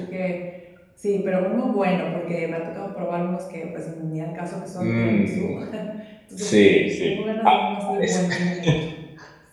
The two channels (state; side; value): identical; both; correlation 1.00